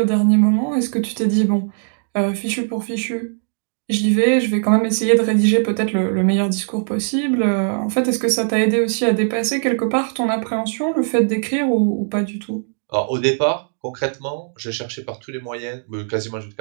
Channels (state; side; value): silent; left; digital silence